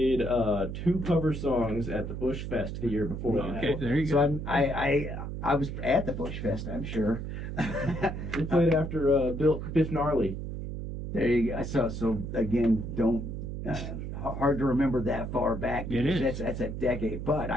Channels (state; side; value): noise; right; hum, 6 dB below the sound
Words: 2 cover songs at the Bush Fest the year before that. Okay, there you go. So I was at the Bush Fest, I'm sure. We played after Biff Gnarly. There you go. So again, don't hard to remember that far back. It is. That's a decade. But